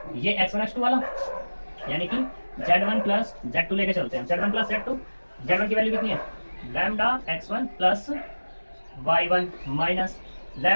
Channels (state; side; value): inverted; both; correlation -1.00